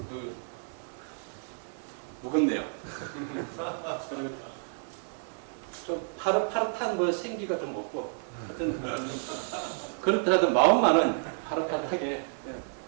무겁네요. 좀 파릇파릇한 뭐 생기가 좀 없고 하여튼 그렇다 하던 마음만은 파릇파릇하게 그냥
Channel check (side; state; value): left; silent; digital silence